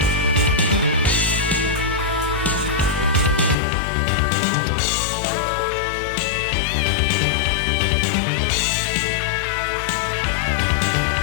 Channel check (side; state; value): right; drops out; at 3.6 s